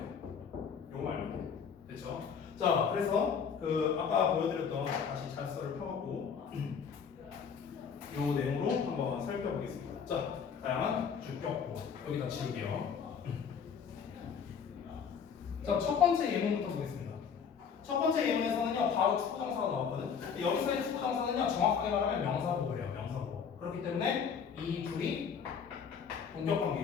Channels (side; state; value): right; quieter; 6.8 dB